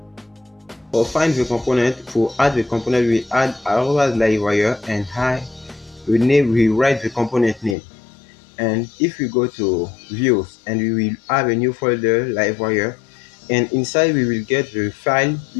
For find the component, for add the component, we add our Livewire and we write the component name. And if we go to views and we will have a new folder Livewire, and inside we will get the file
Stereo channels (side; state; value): right; drops out; at 7.8 s